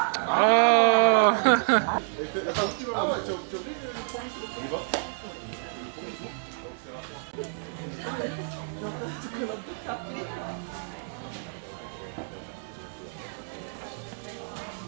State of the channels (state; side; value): silent; left; digital silence